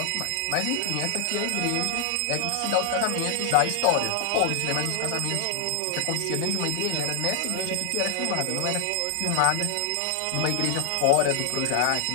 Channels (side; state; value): both; different; correlation 0.00